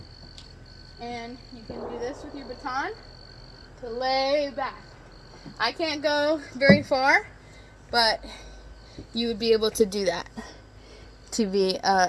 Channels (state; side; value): identical; both; correlation 1.00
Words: and you can do this with your baton to lay back. I can't go very far, but you would be able to do that to be an